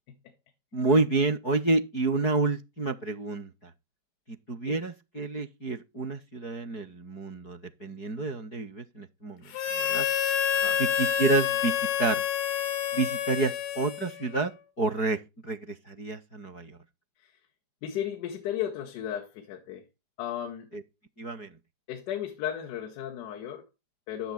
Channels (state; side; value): late; right; 5.3 ms